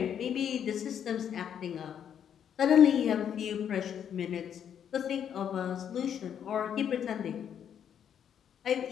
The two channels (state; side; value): quieter; right; 8.8 dB